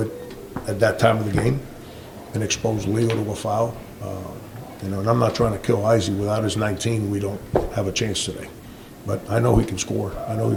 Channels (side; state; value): both; identical; correlation 1.00